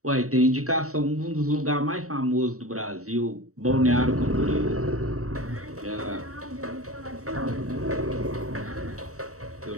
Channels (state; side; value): late; left; 0.65 ms